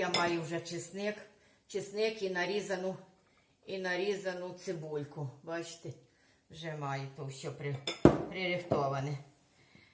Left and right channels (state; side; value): identical; both; correlation 1.00